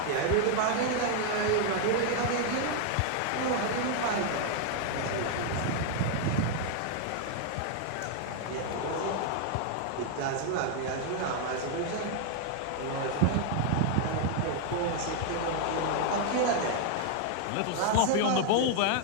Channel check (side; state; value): both; different; correlation 0.00